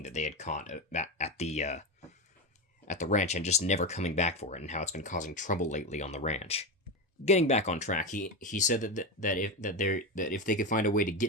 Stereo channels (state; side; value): normal; both; correlation 0.16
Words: that they had caught at the ranch, and just never coming back for it, and how it's been causing trouble lately on the ranch. Getting back on track, he said that if they could find a way to